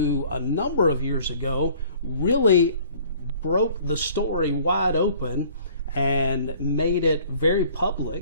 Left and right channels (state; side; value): inverted; both; correlation -0.54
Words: a number of years ago really broke the story wide open and made it very